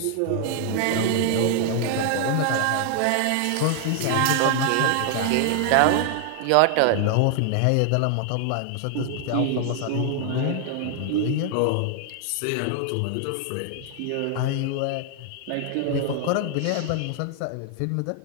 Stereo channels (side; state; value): both; different; correlation 0.00